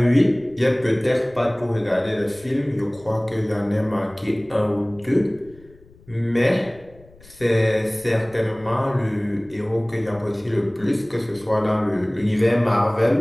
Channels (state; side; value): noise; left; rumble, 25 dB below the sound